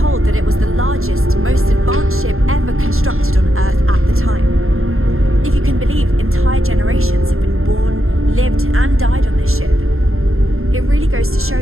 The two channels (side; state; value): left; late; 0.61 ms